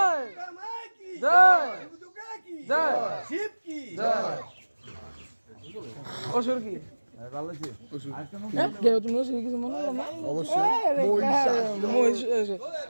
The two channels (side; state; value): both; inverted; correlation -1.00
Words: দুর্গা মাই কি জয় দুর্গা কি জয় শিব কি জয় অসুর কি ভালো আছে কেউ তুমি অসুর কিছু মনে করো না অবশ্যই মহিষ